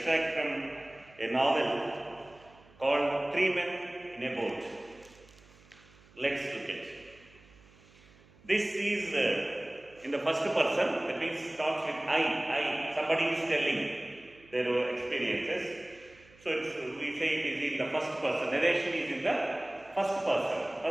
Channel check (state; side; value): noise; right; hum, 26 dB below the sound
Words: from a novel called Three Men in a Boat. Let's look at it. This is in the first person, that means starts with I. Somebody is telling their experiences. So we say it is in the first person. Narration is in the first person.